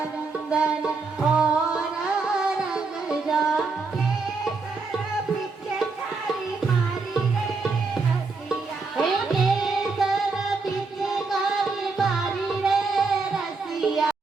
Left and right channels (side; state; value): left; quieter; 4.2 dB